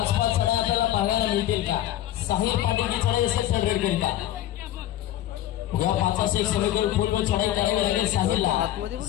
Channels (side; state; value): right; quieter; 13.1 dB